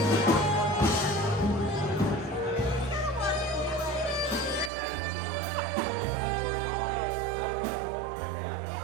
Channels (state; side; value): drops out; left; at 4.7 s